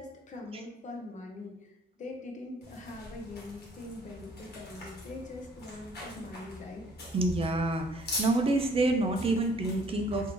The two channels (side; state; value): both; normal; correlation 0.60